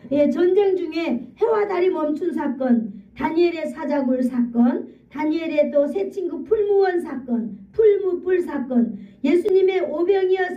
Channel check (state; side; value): identical; both; correlation 1.00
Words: 전쟁 중에 해와 달이 멈춘 사건, 다니엘의 사자굴 사건, 다니엘의 또 새 친구 풀무원 사건, 풀무불 사건, 예수님의 오병이어